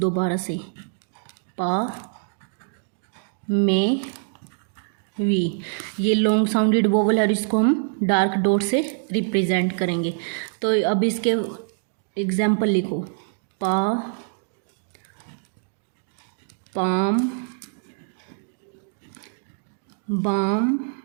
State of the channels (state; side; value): silent; left; digital silence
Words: से, पा, में, वी, ये लॉन्ग साउंडेड वोवल है और इसको हम डार्क डॉट से रिप्रेजेंट करेंगे। तो अब इसके एग्जाम्पल लिखो, पा, पाम, बाम,